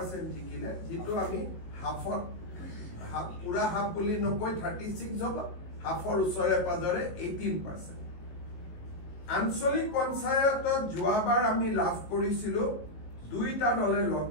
জিকিলে, যিটো আমি হাফত পুৰা হাফ বুলি নকৈ 36 হ'ব, হাফৰ ওচৰে পাজৰে 18%। আঞ্চলিক পঞ্চায়তত যোৱাবাৰ আমি লাভ কৰিছিলো দুইটা দলে লগ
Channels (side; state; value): right; late; 19 ms